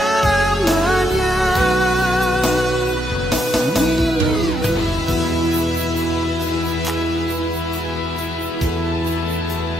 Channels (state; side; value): normal; both; correlation 0.77